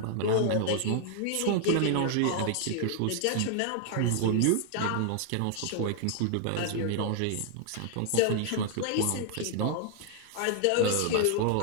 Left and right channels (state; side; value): different; both; correlation 0.00